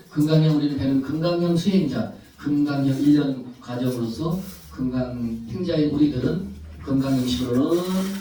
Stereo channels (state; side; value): identical; both; correlation 1.00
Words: 금강경 우리는 배는 금강경 수행자, 금강경 1년 과정으로서 금강 행자인 우리들은